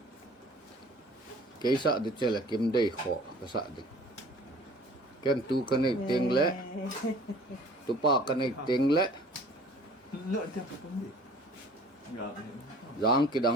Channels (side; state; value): both; normal; correlation 0.49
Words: ke sa de che la kim dei kho ka sa de ken tu ka nei teng le tu pa ka nei teng le giang ki